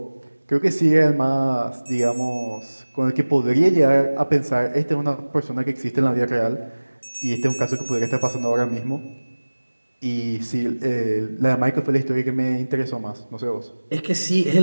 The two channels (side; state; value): both; inverted; correlation -1.00